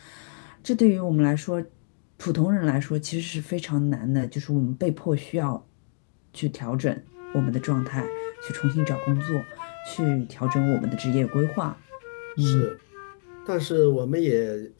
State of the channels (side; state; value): right; silent; digital silence